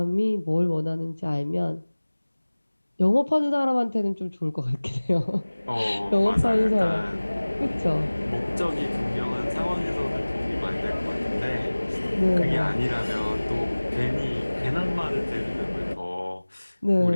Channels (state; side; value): inverted; both; correlation -1.00